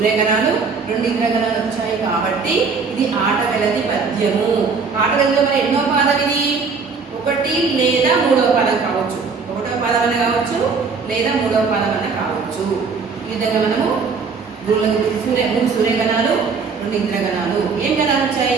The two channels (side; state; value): left; quieter; 5.0 dB